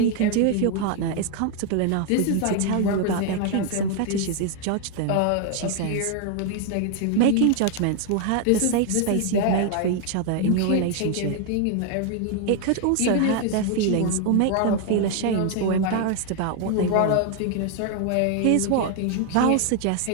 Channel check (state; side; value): different; both; correlation 0.00